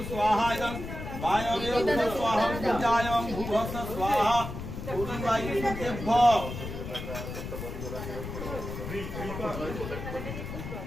জং বায়বে ভূস্বাহা পূজায়ং ভূভস্য স্বাহা পূর্ণবাই সুতেভ্য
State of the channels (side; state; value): left; noise; rumble, 7 dB below the sound